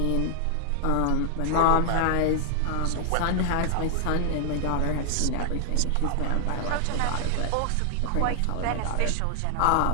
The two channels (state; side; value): different; both; correlation 0.00